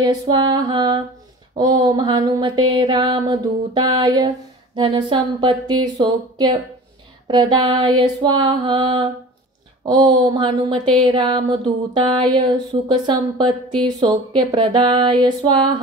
स्वाहा। ओम हनुमते रामदूताय धनसंपत्ति सौख्यप्रदाय स्वाहा। ओम हनुमते रामदूताय सुखसंपत्ति सौख्यप्रदाय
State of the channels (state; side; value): normal; both; correlation 0.40